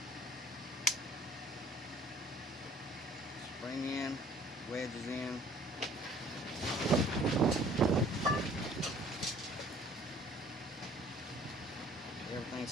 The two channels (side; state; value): both; normal; correlation 0.54